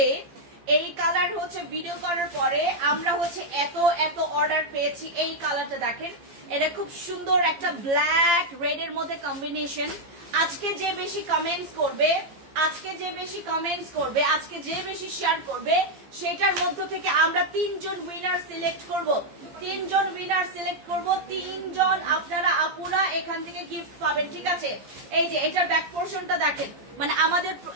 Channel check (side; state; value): left; late; 15 ms